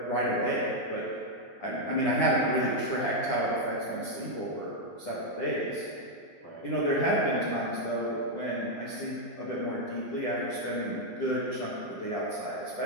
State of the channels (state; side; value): late; right; 10 ms